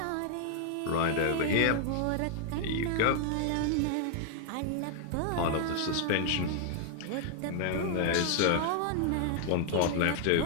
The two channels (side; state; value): both; different; correlation 0.00